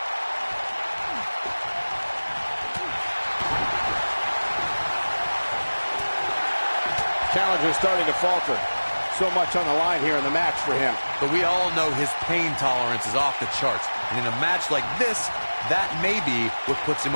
Challenger starting to falter. So much on the line here in the match for him. But we all know his pain tolerance is off the charts. And in a match like this, that may be what puts him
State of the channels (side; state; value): both; inverted; correlation -1.00